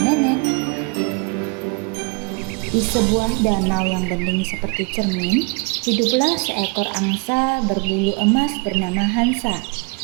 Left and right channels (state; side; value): quieter; left; 32.0 dB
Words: nenek. Di sebuah danau yang bening seperti cermin, hiduplah seekor angsa berbulu emas bernama Hansa.